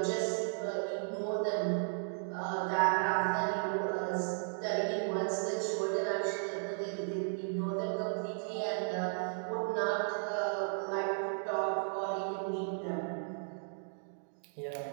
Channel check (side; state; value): left; silent; digital silence